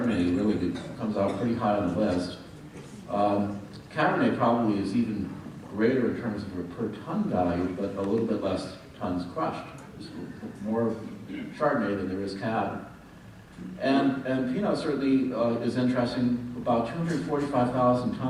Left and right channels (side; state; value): both; identical; correlation 1.00